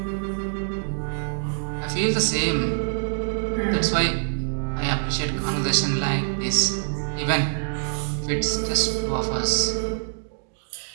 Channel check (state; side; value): silent; left; digital silence